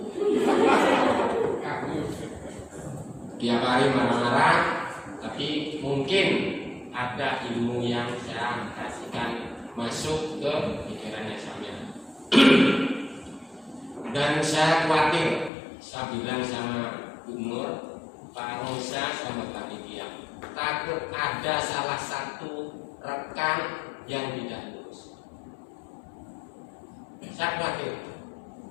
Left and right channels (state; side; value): drops out; right; at 15.5 s